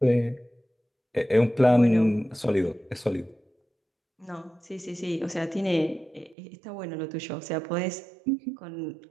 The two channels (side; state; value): left; drops out; at 6.4 s